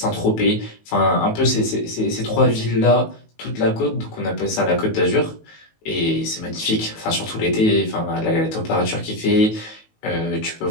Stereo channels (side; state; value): right; late; 19 ms